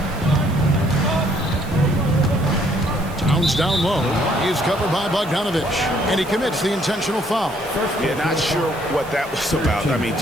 Towns down low. He is covered by Bogdanovich. And he commits the intentional foul. Yeah, not sure what that was about. I mean,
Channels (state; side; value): noise; right; hiss, 21 dB below the sound